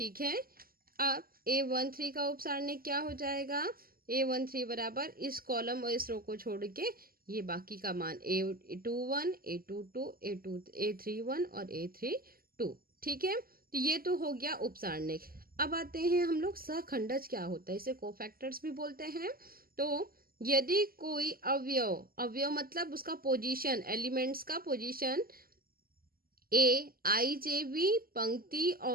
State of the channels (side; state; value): left; late; 0.42 ms